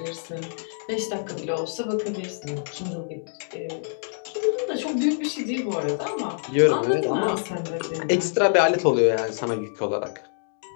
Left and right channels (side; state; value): right; silent; digital silence